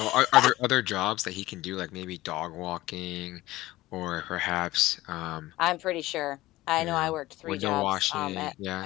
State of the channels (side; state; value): right; quieter; 17.5 dB